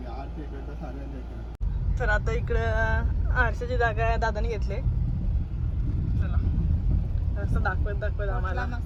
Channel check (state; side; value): identical; both; correlation 1.00